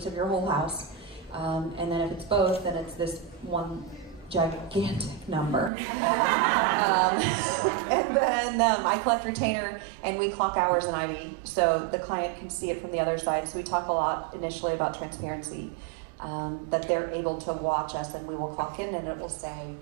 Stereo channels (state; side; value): drops out; left; at 5.7 s